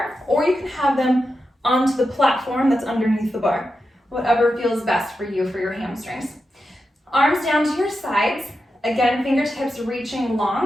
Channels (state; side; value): normal; both; correlation 0.89